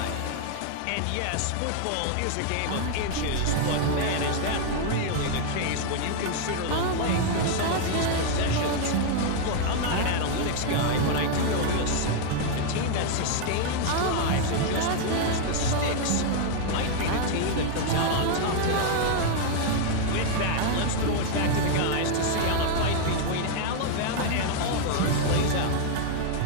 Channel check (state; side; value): different; both; correlation 0.00